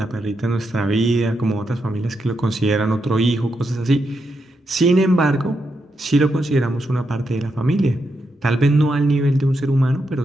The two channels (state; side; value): normal; both; correlation 0.83